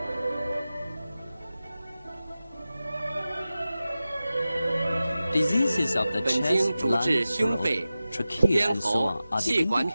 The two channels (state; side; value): inverted; both; correlation -0.95